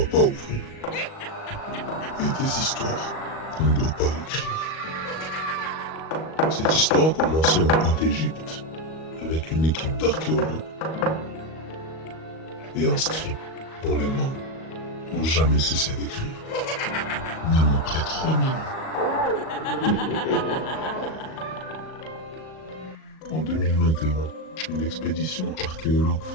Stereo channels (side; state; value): right; late; 38 ms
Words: pas ouvrir. Et des histoires qu'on ne doit pas écrire. Cette histoire a commencé en Haute-Égypte, avec une équipe d'archéologues. Et un scribe dont les mains n'ont jamais cessé d'écrire. Même après 3000 ans. En 2021, une expédition archéologue